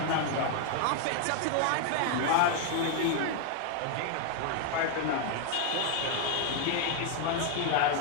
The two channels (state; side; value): different; both; correlation 0.00